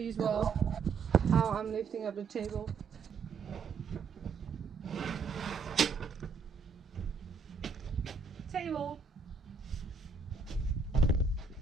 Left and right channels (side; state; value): left; quieter; 4.9 dB